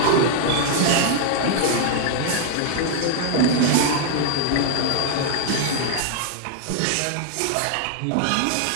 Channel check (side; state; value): both; different; correlation 0.00